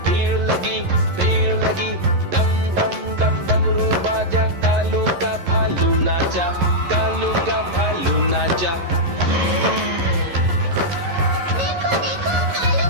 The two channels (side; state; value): left; late; 11 ms